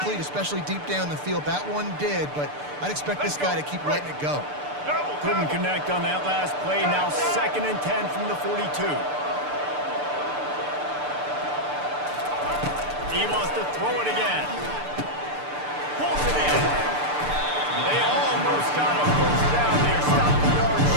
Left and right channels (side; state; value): left; late; 6.8 ms